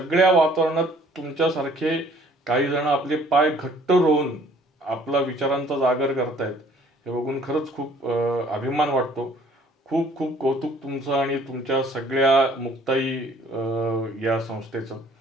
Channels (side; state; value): both; normal; correlation 0.57